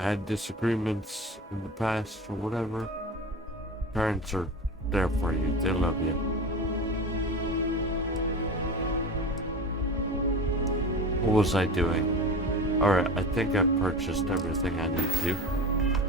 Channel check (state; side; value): normal; both; correlation 0.31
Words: disagreements in the past or whatever, parents are there for you. They love you. What was I doing? Alright, I think I purchased everything I need to.